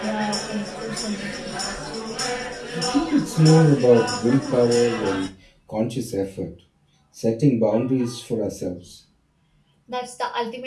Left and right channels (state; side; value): identical; both; correlation 1.00